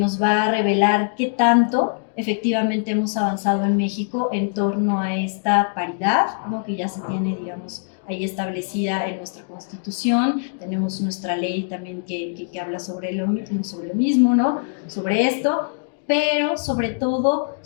va a revelar qué tanto efectivamente hemos avanzado en México en torno a esta paridad, ¿no? Que ya se tiene, digamos, ahí establecida en nuestra Constitución. Tenemos nuestra ley también que habla sobre lo mismo, ¿no? Sobre esto, pero sobre todo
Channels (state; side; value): silent; right; digital silence